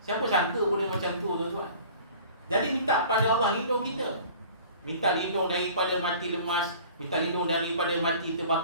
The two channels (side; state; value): both; inverted; correlation -0.46